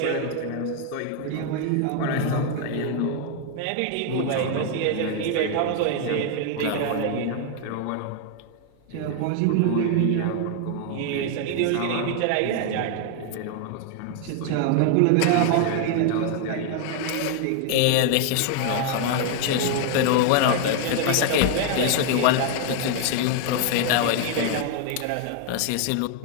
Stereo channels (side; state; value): both; different; correlation 0.00